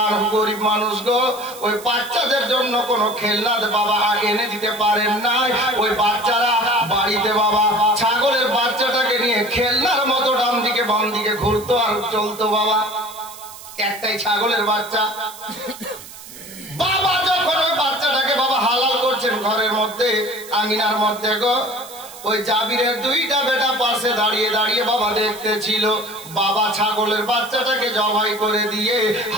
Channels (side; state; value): right; noise; hiss, 16 dB below the sound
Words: গরিব মানুষ গো, ওই বাচ্চাদের জন্য কোনো খেলনা বাবা এনে দিতে পারেন নাই। ওই বাচ্চারা বাড়িতে বাবা ছাগলের বাচ্চাটাকে নিয়ে খেলনার মতো ডান দিকে বাম দিকে ঘুরতো আর চলতো বাবা। একটাই ছাগলের বাচ্চা। বাবা যখন ওই বাচ্চাটাকে বাবা হালাল করছেন ঘরের মধ্যে, আঙিনার মধ্যে গো, ওই জাবিরের দুইটা বেটা পাশে দাঁড়িয়ে দাঁড়িয়ে বাবা দেখতেছিল। বাবা ছাগলের বাচ্চাটাকে জবাই করে দিয়ে,